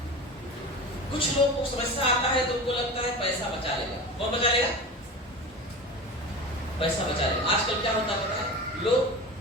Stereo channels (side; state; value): both; normal; correlation 0.30